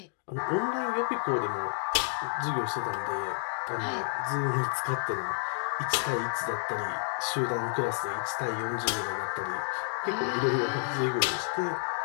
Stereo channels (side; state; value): right; silent; 58 dB below the other